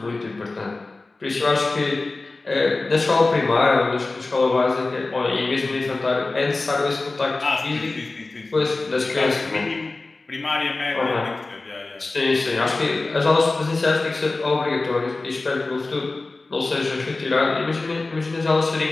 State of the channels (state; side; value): quieter; right; 3.4 dB